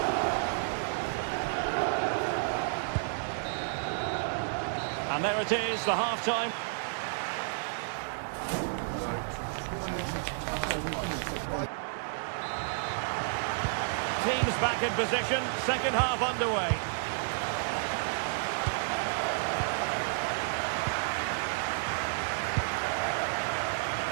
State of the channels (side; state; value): left; silent; digital silence